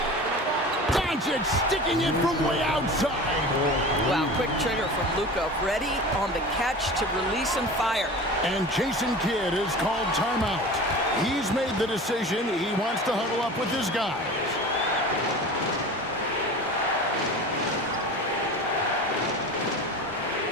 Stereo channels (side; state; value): both; normal; correlation 0.35